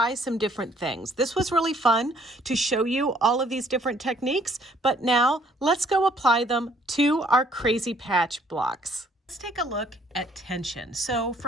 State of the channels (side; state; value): both; normal; correlation 0.63